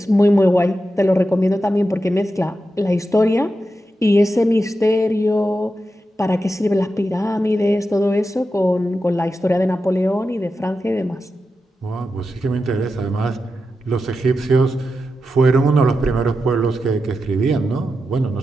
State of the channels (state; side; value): normal; both; correlation 0.89